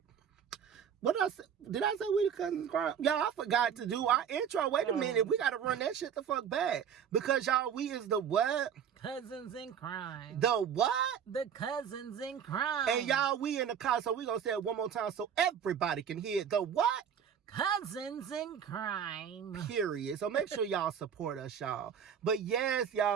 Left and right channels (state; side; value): quieter; left; 8.0 dB